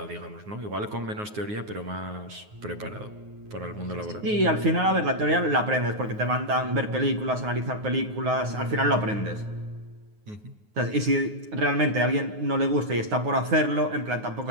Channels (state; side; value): late; left; 9.5 ms